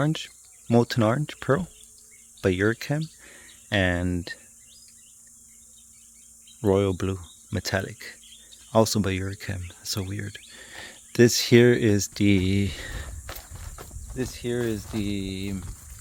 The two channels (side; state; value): both; identical; correlation 1.00